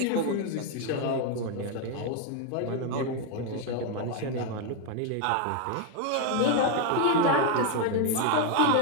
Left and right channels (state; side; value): different; both; correlation 0.01